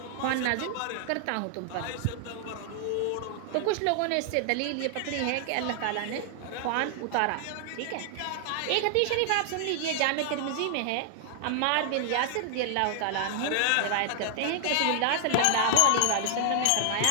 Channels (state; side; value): different; both; correlation 0.00